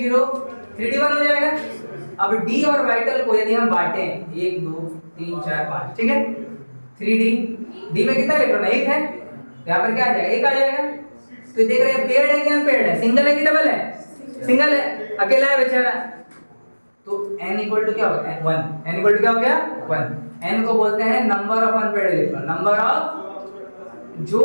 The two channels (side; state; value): both; inverted; correlation -1.00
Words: 3d1 हो जाएगा। अब डी ऑर्बिटल को यदि हम बांटे 1 2 3 4 5, ठीक है, 3d, डी में कितना इलेक्ट्रॉन है? 1 है, यहाँ पर क्या आ जाएगा? 1 आ जाएगा। तो देख रहे हैं पेयर्ड है कि अनपेयर्ड है, सिंगल है कि डबल है? सिंगल है, अकेला है बेचारा। तो n इक्वल टू क्या होता है? 1। n इक्वल टू क्या हो गया? 1। n को बोलते हैं number of unpaired electron, number of